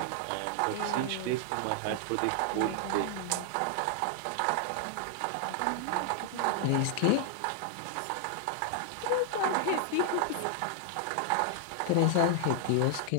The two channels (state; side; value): different; both; correlation 0.00